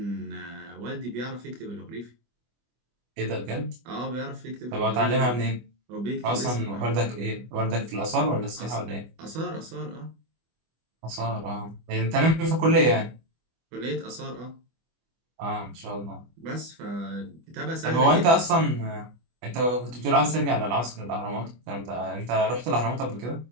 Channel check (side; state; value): left; late; 25 ms